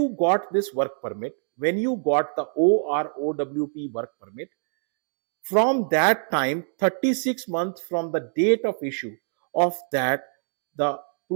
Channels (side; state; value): left; silent; digital silence